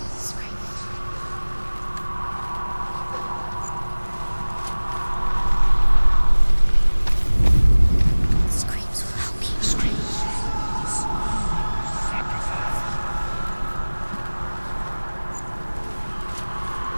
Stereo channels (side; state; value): both; inverted; correlation -1.00